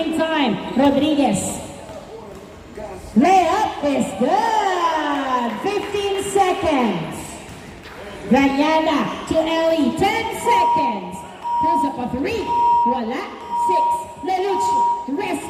time. Rodriguez. Layup is good. 15 seconds. Ranyada to Ellie. 10 seconds. Pulls up a 3. Wala. 6. Leluch.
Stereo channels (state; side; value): identical; both; correlation 1.00